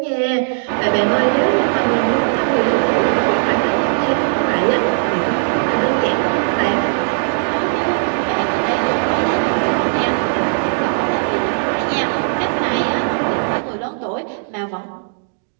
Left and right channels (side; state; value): left; silent; digital silence